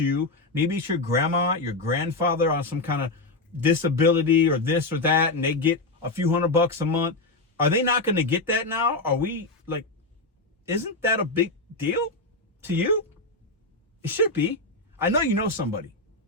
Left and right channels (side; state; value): right; quieter; 3.1 dB